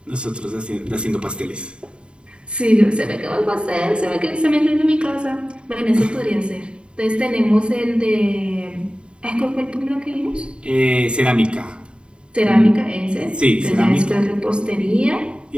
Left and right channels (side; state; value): left; late; 0.053 ms